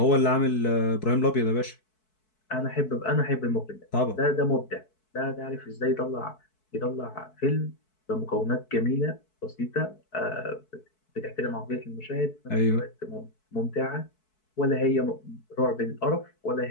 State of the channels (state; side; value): late; right; 4.6 ms